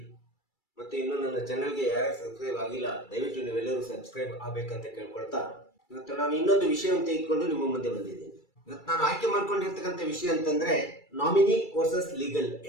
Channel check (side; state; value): right; late; 2.3 ms